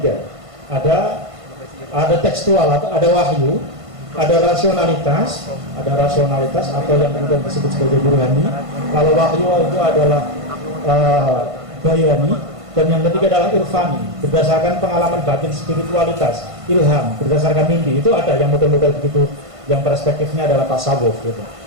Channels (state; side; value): late; left; 1.5 ms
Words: Ada tekstual atau ada wahyu, ada rasionalitas atau yang kemudian disebut sebagai burhani. Kalau wahyu itu adalah bayani, Dan yang ketiga adalah irfani, berdasarkan pengalaman batin, spiritualitas, ilham, berdasarkan mimpi. Itu ada yang model-model begitu, yang perspektifnya adalah tasawuf gitu.